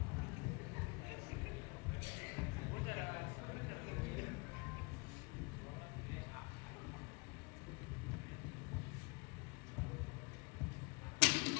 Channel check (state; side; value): quieter; right; 30.3 dB